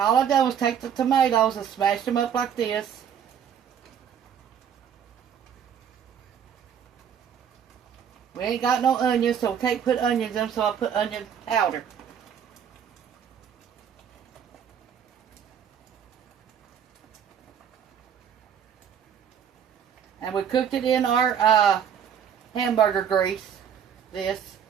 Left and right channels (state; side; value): quieter; left; 8.3 dB